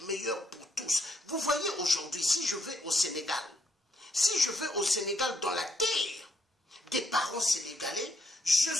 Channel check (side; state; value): both; normal; correlation 0.74